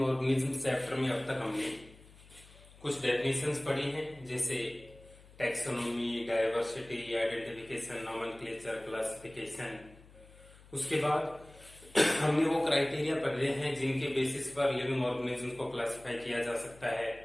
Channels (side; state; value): left; noise; hum, 23 dB below the sound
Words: organism chapter में अब तक हमने कुछ डेफिनेशंस पढ़ी हैं, जैसे taxonomy, diversity, identification, nomenclature, classification. उसके बाद हमने वो क्राइटेरिया पढ़े हैं जिनके बेसिस पर लिविंग ऑर्गेनिज्म को क्लासिफाई किया जा सकता है।